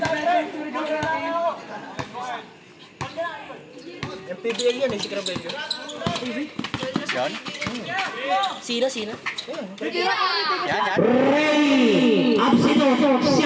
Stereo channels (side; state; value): both; identical; correlation 1.00